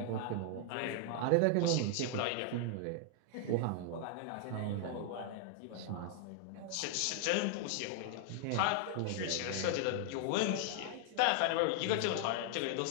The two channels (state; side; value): different; both; correlation 0.00